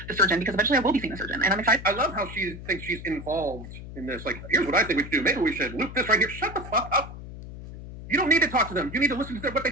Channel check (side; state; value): left; noise; hum, 12 dB below the sound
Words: the surgeon because eventually I will be seeing the surgeon and I'm excited. I love how she thinks she's involved in this. Like, here's what I think we should do. Maybe we should loop this right here. Shut the fuck up. You don't need to talk to them. You need to listen to what they